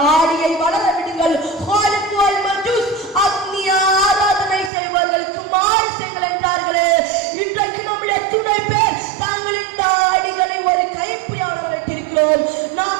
வளர விடுங்கள், ஹாலிக் வல் மஜூஸ் அக்னி ஆராதனை செய்வர்களுக்கு மாறு செய்யுங்கள் என்றார்களே. இன்றைக்கு நம்முடைய துணை பேர் தங்களின் தாடிகளை ஒரு கைப்பிடியாக வைத்திருக்கிறோம்.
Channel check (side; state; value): left; drops out; at 4.7 s